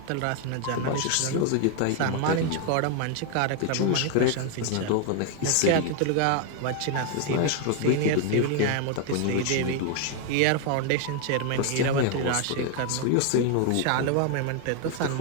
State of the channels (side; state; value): both; different; correlation 0.01